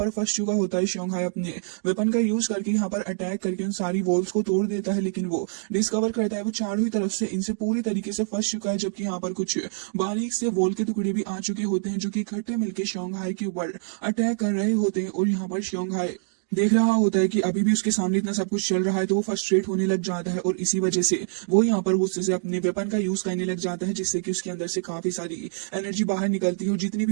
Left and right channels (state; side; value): silent; left; digital silence